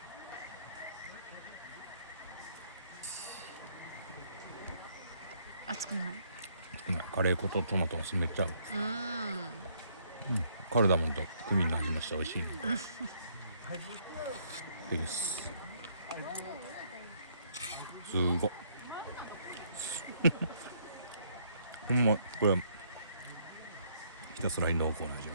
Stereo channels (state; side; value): inverted; both; correlation -0.68